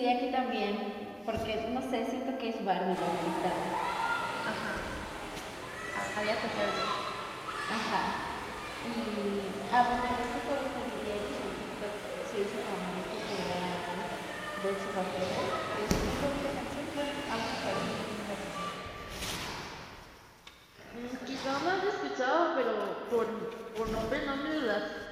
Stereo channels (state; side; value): identical; both; correlation 1.00